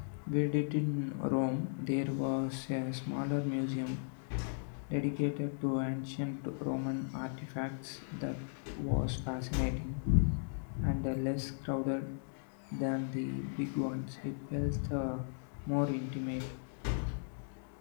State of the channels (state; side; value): silent; right; digital silence